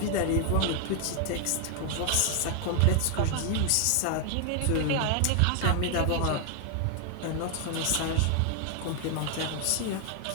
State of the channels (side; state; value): both; different; correlation 0.00